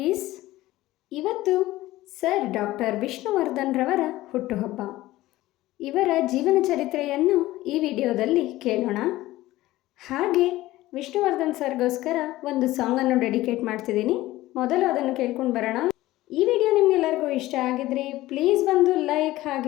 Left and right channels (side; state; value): right; quieter; 16.8 dB